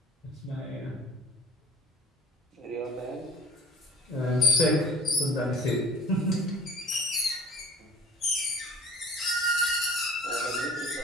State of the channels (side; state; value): both; normal; correlation 0.49